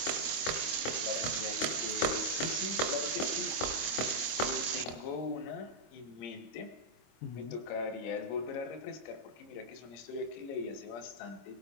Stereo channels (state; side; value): late; right; 25 ms